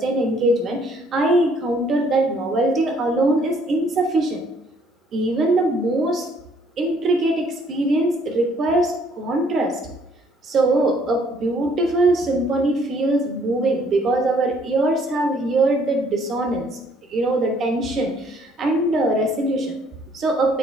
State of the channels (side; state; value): both; normal; correlation 0.63